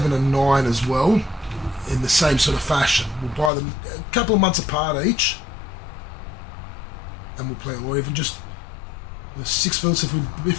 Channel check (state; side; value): drops out; right; at 3.5 s